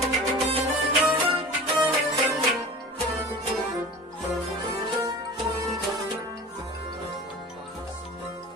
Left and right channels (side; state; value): both; normal; correlation 0.37